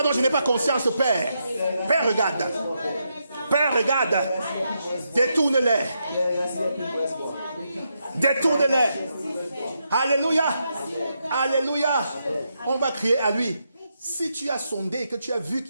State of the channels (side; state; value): both; inverted; correlation -0.82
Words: dont je n'ai pas conscience, Père. Père, regarde. Père, regarde. Détourne-les. Détourne-les. Alléluia. Alléluia. On va crier à lui. Si tu as sondé et que tu as vu